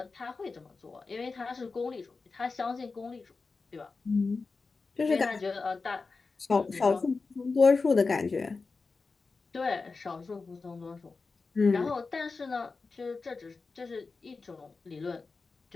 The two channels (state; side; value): quieter; right; 4.2 dB